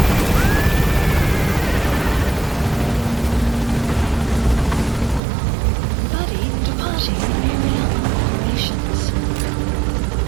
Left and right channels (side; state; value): left; drops out; at 5.2 s